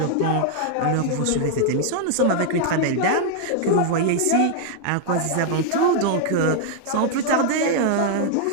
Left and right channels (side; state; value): both; different; correlation 0.00